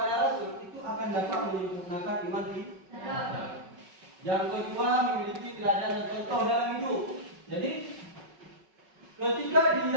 Rasul itu akan dapat menyempurnakan iman kita. Yang kedua, memiliki teladan dan contoh dalam hidup. Jadi, ketika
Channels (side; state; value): left; late; 5.4 ms